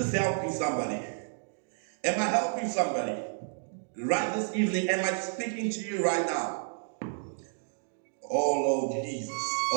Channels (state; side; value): silent; left; digital silence